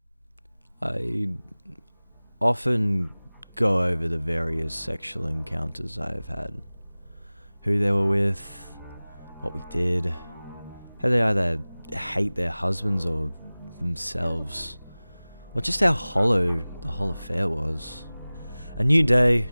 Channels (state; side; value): inverted; both; correlation -0.99